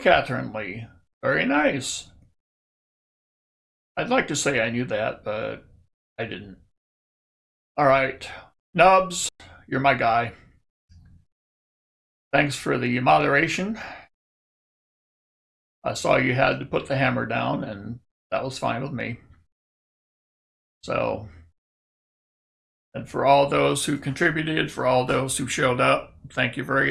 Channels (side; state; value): both; identical; correlation 1.00